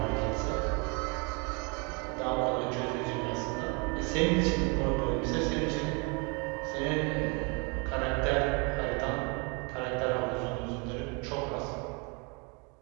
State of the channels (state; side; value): quieter; left; 32.4 dB